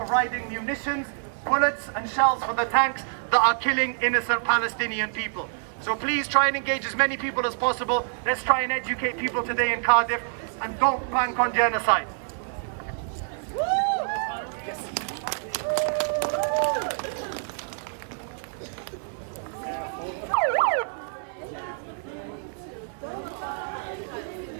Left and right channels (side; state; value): left; silent; 60 dB below the other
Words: munitions, bullets and shells for the tanks that are killing innocent Palestinian people. So please try and engage as many people as possible. Let's try and educate people today in Cardiff and don't bank on genocide.